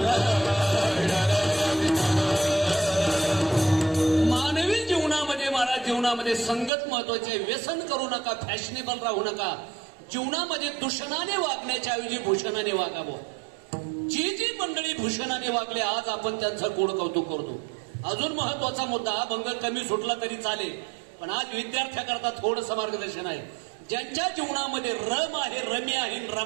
मानवी जीवनामध्ये महाराज जीवनामध्ये संगत महत्वाचे. व्यसन करू नका, फॅशनेबल राहू नका. जीवनामध्ये दूषणाने वागण्याच्या ऐवजी भूषणाने वागावं. जी जी मंडळी भूषणाने वागले आज आपण त्यांचं गोड कौतुक करतो. अजून महत्वाचा मुद्दा, भंग कमी सुटला तरी चालेल पण आज विद्यार्थ्याकरता थोडंसं मार्गदर्शन आहे. ज्यांच्या जीवनामध्ये रम आहे, रमी आहे,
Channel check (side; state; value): left; drops out; at 6.7 s